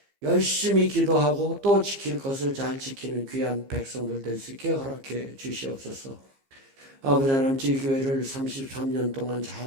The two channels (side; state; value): left; late; 15 ms